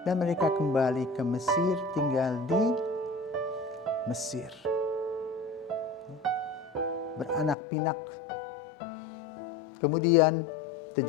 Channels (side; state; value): right; drops out; at 7.6 s